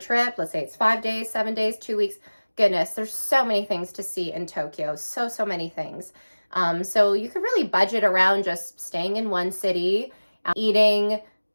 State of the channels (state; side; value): inverted; both; correlation -1.00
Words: let's say it's 5 days, 7 days, 2 weeks, goodness, there's so many things to see in Tokyo, so many things. So you could really budget around just staying in one city, eating